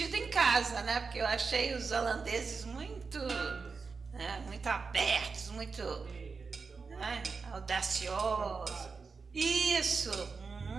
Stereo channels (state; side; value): quieter; left; 4.8 dB